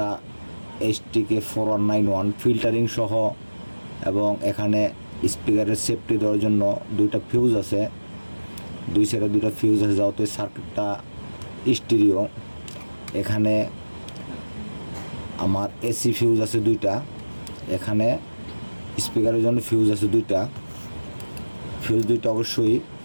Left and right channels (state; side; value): inverted; both; correlation -1.00